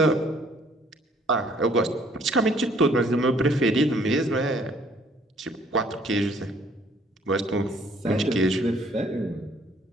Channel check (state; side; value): normal; both; correlation 0.61